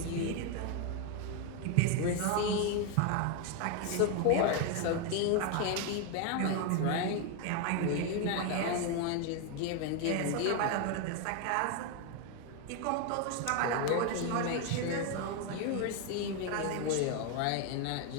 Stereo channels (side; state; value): both; different; correlation 0.01